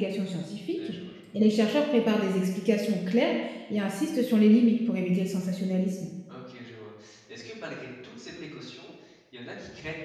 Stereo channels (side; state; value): both; identical; correlation 1.00